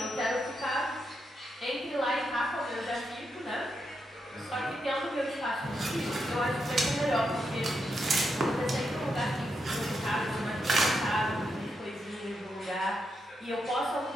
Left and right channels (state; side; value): normal; both; correlation 0.83